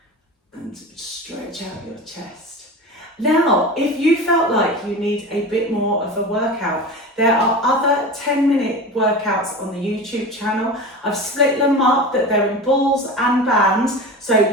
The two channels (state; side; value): normal; both; correlation 0.30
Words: And stretch out your chest. Now, if you felt like you need a bit more of a workout, there are other 10-minute workouts on the YouTube channel. I've split them up that they're in balls and bands, so